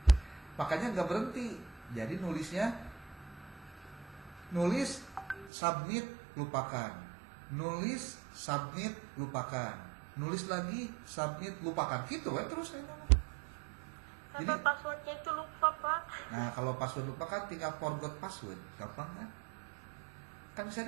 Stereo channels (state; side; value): drops out; left; at 5.5 s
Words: Makanya nggak berhenti. Jadi nulis submit lupakan, nulis submit lupakan, nulis lagi submit lupakan, gitu kan terus saya ngomong. Sampai passwordnya itu lupa, Pak. Nah kalau password lupa kan tinggal forgot password, gampang kan? Kan bisa